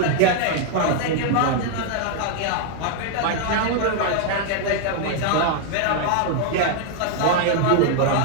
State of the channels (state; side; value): different; both; correlation 0.00